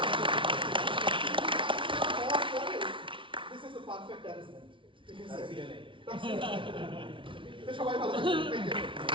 this is the perfect arrangement, ঠিক আছে। সবাই ভালো থাকবেন,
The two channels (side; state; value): left; late; 0.25 ms